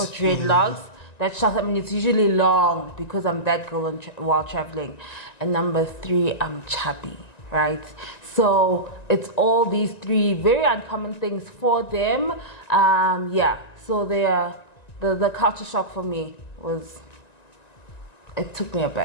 dreadlocks. That shows, I mean, it's usually long because I'm that girl while traveling. And number 3, I'm chubby, right? So it's all these 3 very uncommon things for them. So they are, the culture shock for me was, it took me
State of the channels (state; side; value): late; right; 1.9 ms